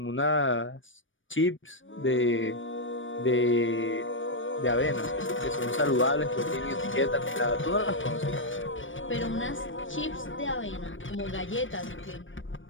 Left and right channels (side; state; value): right; late; 0.56 ms